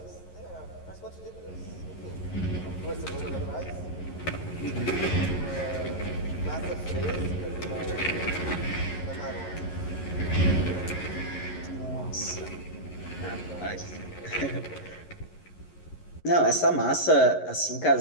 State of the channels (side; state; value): right; late; 11 ms